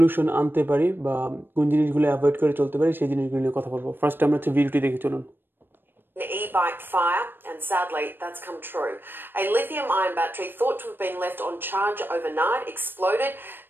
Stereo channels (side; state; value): left; late; 0.097 ms